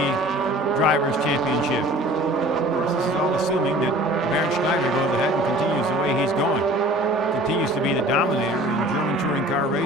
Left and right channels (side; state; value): both; normal; correlation 0.45